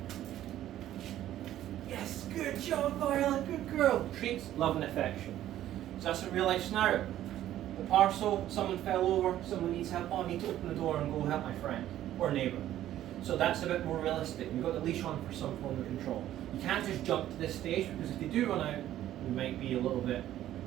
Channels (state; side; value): quieter; left; 12.7 dB